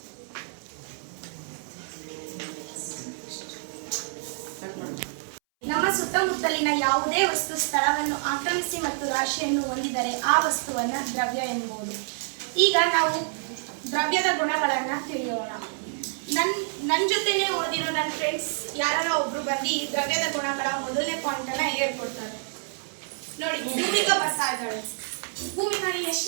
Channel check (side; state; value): left; silent; 60 dB below the other